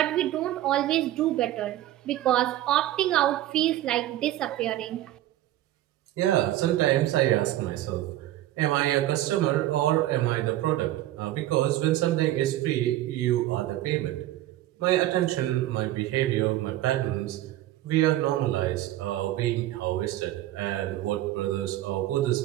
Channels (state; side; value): quieter; left; 14.4 dB